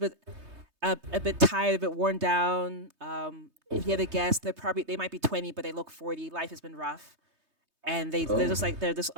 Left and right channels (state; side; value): late; left; 3.2 ms